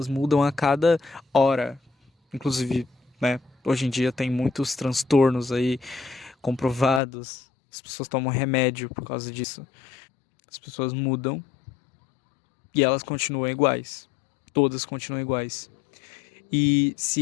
mudam a cada hora. Inclusive, né, hoje em dia tem muitos transtornos aí comprovados. As pessoas tomam remédio por causa disso. As pessoas mudam e elas continuam iguais. Todas continuam iguais. E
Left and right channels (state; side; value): drops out; right; at 7.0 s